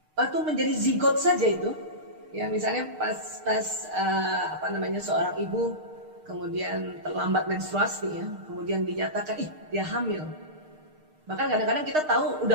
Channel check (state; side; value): late; left; 6.5 ms